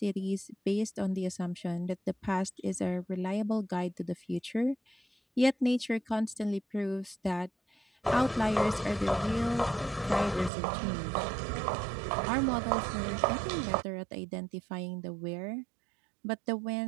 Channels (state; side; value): drops out; left; at 10.5 s